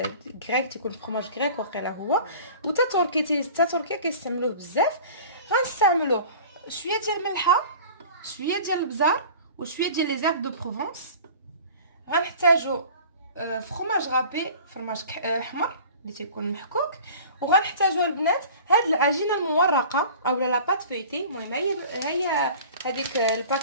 غريك، تيكون فرomاج غريك واقيلا هو، وتا تركيا كيستعملوه بزاف. غنستعملو شويه ديال الملحه، شويه ديال البزار، وشويه ديال لي زيرب دو بروفونس. غنحتاجو فرomاج غابي، فرماج احمر اللي تيكون محكوك. وغنحتاجو البنات هاد العجينه المورقه اولا لا بات فيتي. المهم هي هذيك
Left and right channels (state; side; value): inverted; both; correlation -0.42